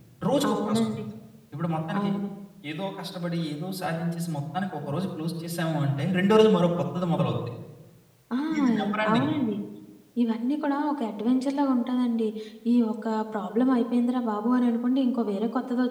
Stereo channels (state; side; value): identical; both; correlation 1.00